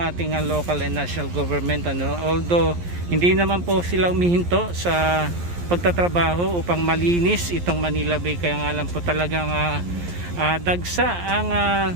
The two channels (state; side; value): late; left; 11 ms